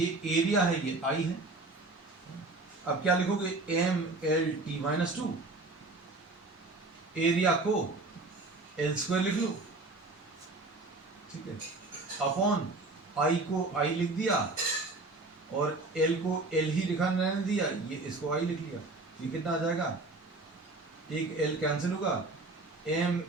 एरिया है, ये आई है। अब क्या लिखोगे, M L T minus 2, area को एल स्क्वायर लिख लो, ठीक है, अपॉन आई को आई लिख दिया और एल को एल ही लिखा रहने दिया, ये इसको आई लिख लिया। ये कितना आ जाएगा, एक एल कैंसिल होगा, M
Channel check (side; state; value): left; quieter; 3.2 dB